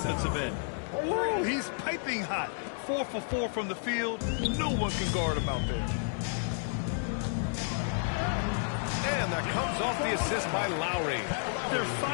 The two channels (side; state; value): right; silent; digital silence